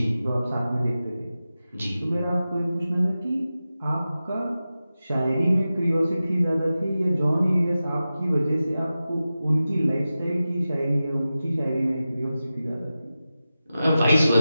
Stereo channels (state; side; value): inverted; both; correlation -0.94